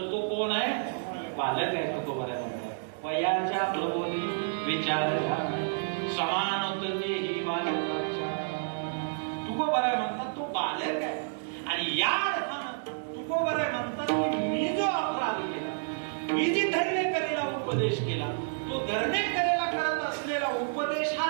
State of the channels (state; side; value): silent; left; 58 dB below the other